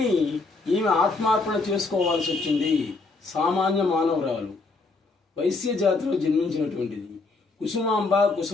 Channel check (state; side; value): quieter; right; 3.7 dB